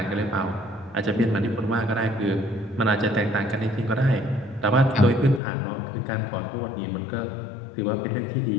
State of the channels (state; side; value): drops out; right; at 5.4 s